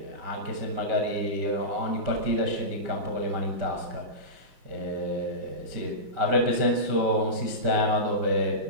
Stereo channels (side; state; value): left; late; 5.2 ms